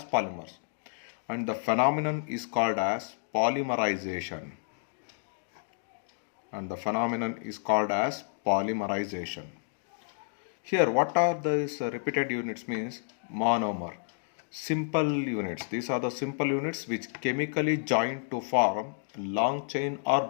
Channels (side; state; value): right; silent; digital silence